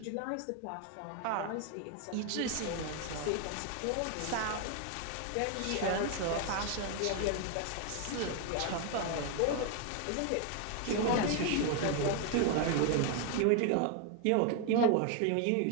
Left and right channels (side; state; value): both; different; correlation 0.01